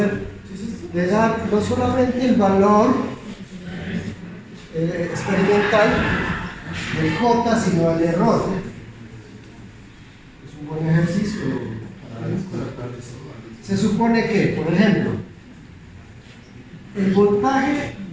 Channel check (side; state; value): both; identical; correlation 1.00